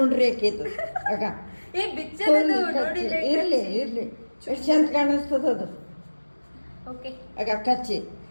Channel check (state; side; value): inverted; both; correlation -1.00